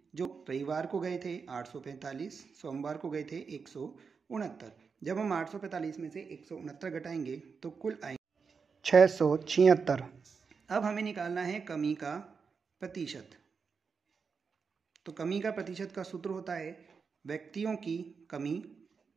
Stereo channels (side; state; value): left; quieter; 5.5 dB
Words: जो रविवार को गए थे 845, सोमवार को गए थे 169। जब हम 845 में से 169 घटाएंगे तो कुल आएंगे 676। अब हमें निकालना है कमी का प्रतिशत। तो कमी का प्रतिशत का सूत्र होता है व्यक्तियों की कमी